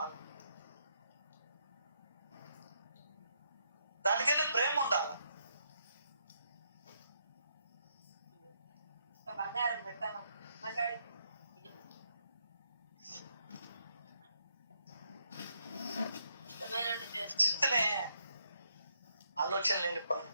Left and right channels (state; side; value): inverted; both; correlation -0.76